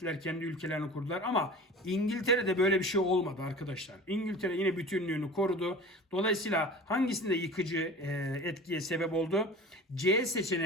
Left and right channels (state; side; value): normal; both; correlation 0.38